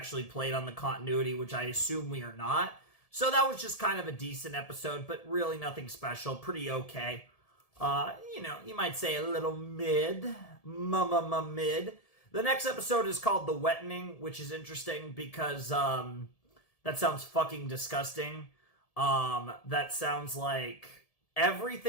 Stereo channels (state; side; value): late; right; 1.7 ms